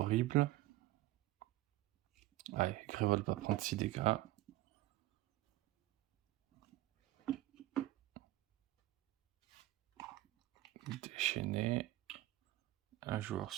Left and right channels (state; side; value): quieter; left; 16.7 dB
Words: Allez, Grévol va prendre 6 dégâts. Déchaîné. Un joueur